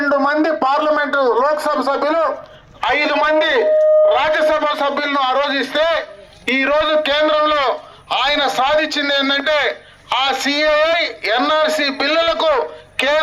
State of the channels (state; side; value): identical; both; correlation 1.00